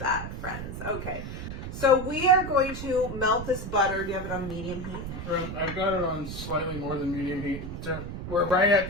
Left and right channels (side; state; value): right; noise; rumble, 7 dB below the sound